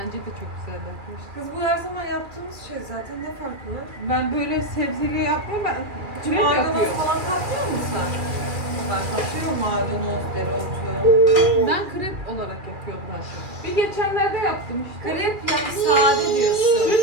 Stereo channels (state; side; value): late; left; 2.4 ms